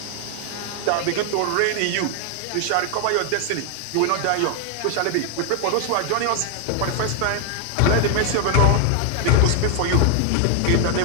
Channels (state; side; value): different; both; correlation 0.00